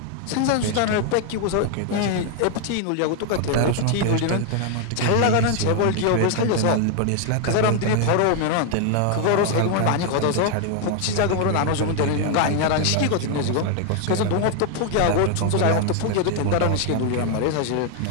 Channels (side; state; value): both; different; correlation 0.00